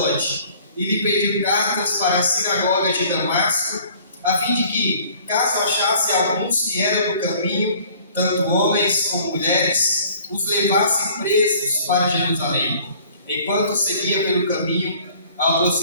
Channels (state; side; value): inverted; both; correlation -0.53